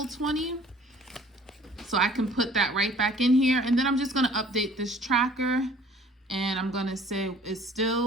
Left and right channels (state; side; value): normal; both; correlation 0.53